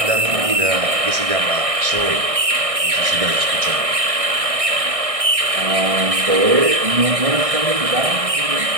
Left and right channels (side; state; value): left; late; 1.6 ms